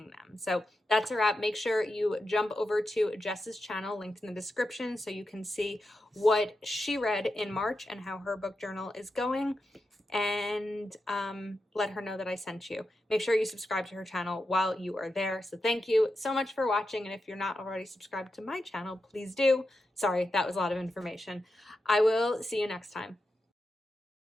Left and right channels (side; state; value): both; normal; correlation 0.89